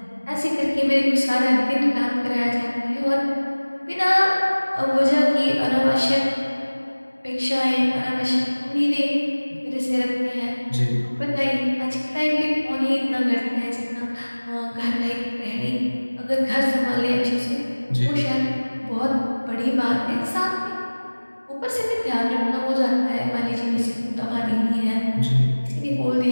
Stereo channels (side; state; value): both; inverted; correlation -1.00